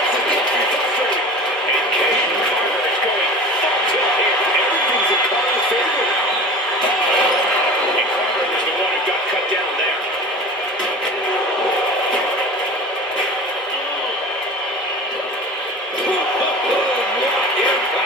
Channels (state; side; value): normal; both; correlation 0.36